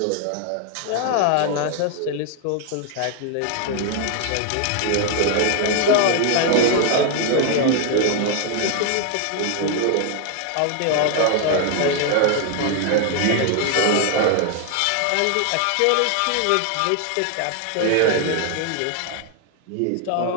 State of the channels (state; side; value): different; both; correlation 0.00